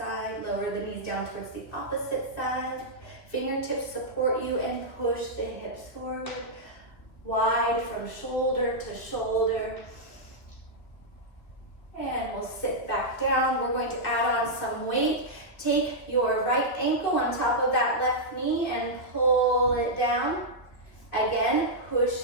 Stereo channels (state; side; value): late; right; 2.7 ms